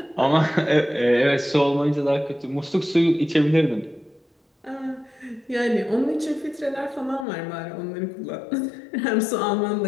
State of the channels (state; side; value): drops out; right; at 7.2 s